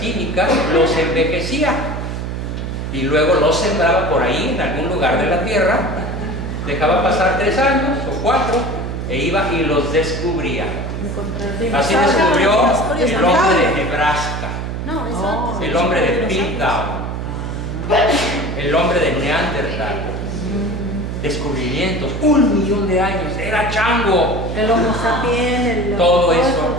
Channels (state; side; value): noise; right; hum, 4 dB below the sound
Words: los envejecía y luego los sembraba por ahí en algún lugar de la tierra, dejaba pasar 3 años o 4 e iba y los descubría. Así descubrió el hombre de Nebraska, No, eso. el hombre de Piltdown, el hombre de Neandertal. Descubrimientos, 1 millón de años, era chango. El Homo sapiens, Todo